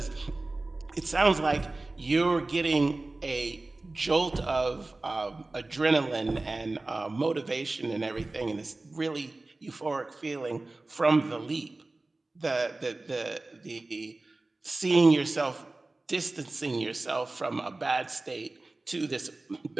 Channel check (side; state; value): left; quieter; 3.1 dB